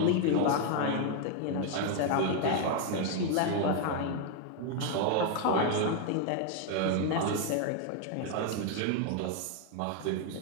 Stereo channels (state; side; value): different; both; correlation 0.01